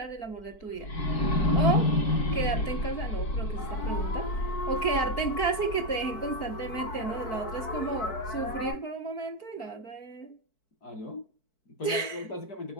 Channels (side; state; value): right; late; 4.6 ms